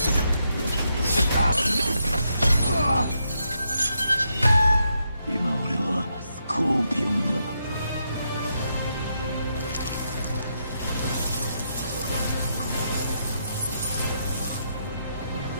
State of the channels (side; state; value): both; inverted; correlation -0.81